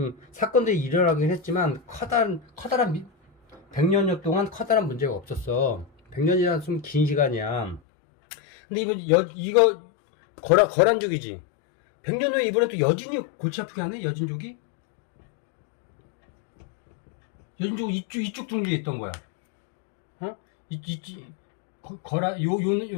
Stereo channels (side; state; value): right; drops out; at 7.8 s